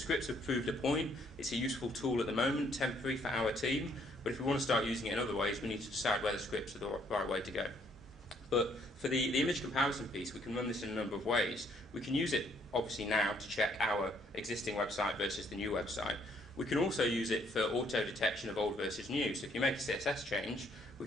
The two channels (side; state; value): both; normal; correlation 0.67